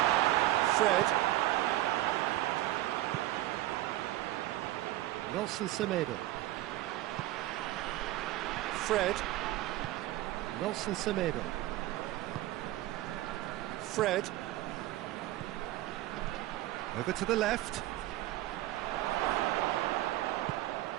Fred. Nelson Semedo. Fred. Nelson Semedo. Fred. Over to the left.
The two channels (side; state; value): left; quieter; 16.0 dB